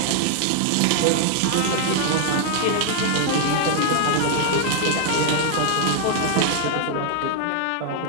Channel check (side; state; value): both; different; correlation 0.00